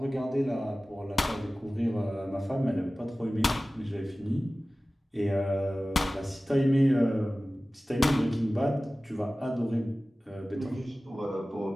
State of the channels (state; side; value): normal; both; correlation 0.97